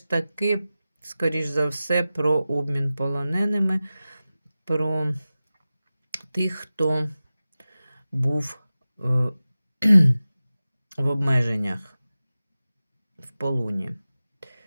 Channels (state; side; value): inverted; both; correlation -0.95